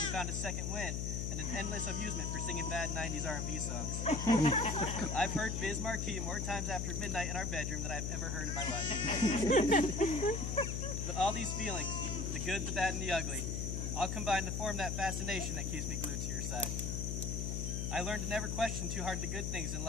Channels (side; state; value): left; noise; hum, 2 dB below the sound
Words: you found a second wind, and an endless amusement for singing bad 90s R&B songs. I've heard Biz Marquee more times after midnight in our bedroom than I've ever heard in my life. But all these feelings, the good, the bad, and the ugly, all combine to form that fascination that keeps me glued to your side. I learned to never question too hard the good things in